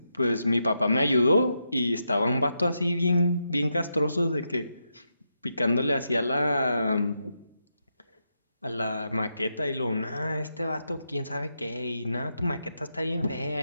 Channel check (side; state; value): both; inverted; correlation -0.84